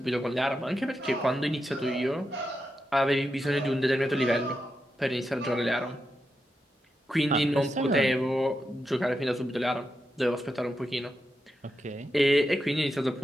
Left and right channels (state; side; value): normal; both; correlation 0.87